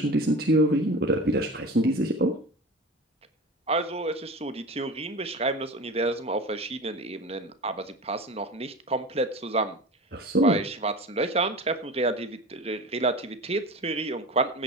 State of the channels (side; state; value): both; normal; correlation 0.33